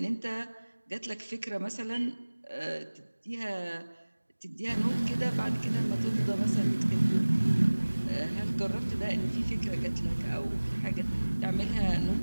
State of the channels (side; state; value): both; inverted; correlation -1.00